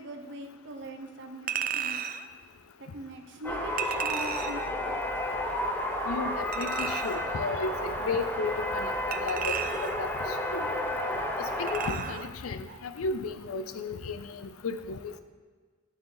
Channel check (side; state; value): both; normal; correlation 0.23